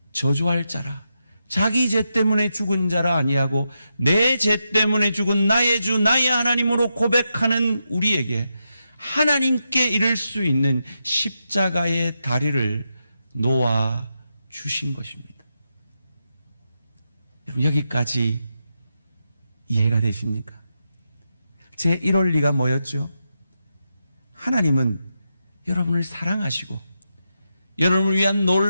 저주할 자라, 자기 죄 때문에 죽은 자라 아니하고 내 죄 때문에 죽은 나의 주 나의 하나님으로 고백하는 우리에게 하나님께 이를 수 있는 십자가의 다리를 놓아 주신 것입니다. 여러분, 여기까지 이해가 되십니까? 제 1원리가 뭐였죠? 하나님은 여러분을 사랑하시고 여러분을 위한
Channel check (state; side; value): inverted; both; correlation -0.86